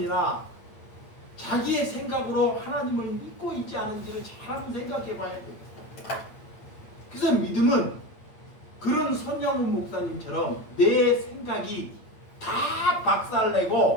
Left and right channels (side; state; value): right; late; 8.8 ms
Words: 자기의 생각으로 하나님을 믿고 있지 않은지를 잘 한번 생각해 봐야 됩니다. 그래서 믿음은 그런 손양훈 목사님처럼 내 생각이 다